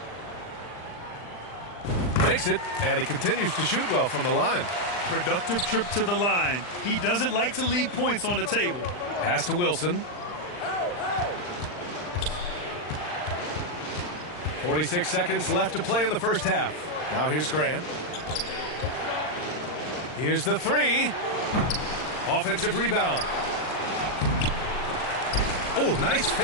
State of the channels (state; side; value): late; right; 39 ms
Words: Makes it, and he continues to shoot well from the line. Productive trip to the line. He doesn't like to leave points on the table. Pass to Wilson. 46 seconds left to play in the first half. Now here's Grant. Here's the 3. Offensive rebound. Oh, nice